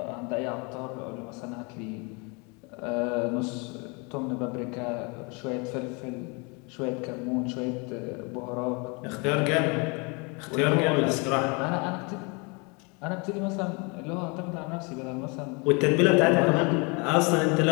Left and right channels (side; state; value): right; quieter; 31.0 dB